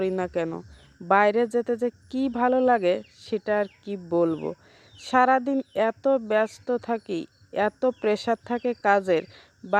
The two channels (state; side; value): identical; both; correlation 1.00